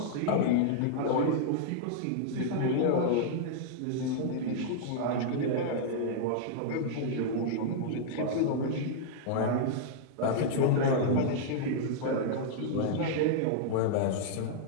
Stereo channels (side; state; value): both; different; correlation -0.01